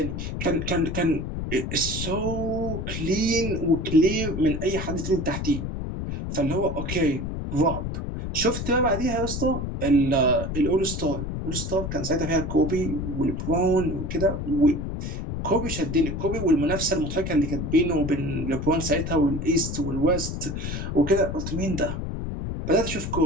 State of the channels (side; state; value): left; noise; rumble, 4 dB below the sound